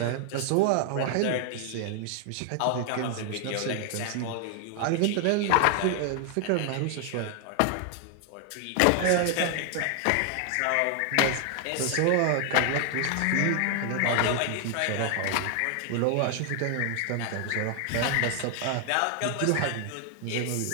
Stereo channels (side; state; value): both; different; correlation 0.00